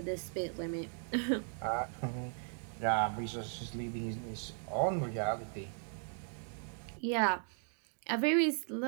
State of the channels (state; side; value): silent; left; 53 dB below the other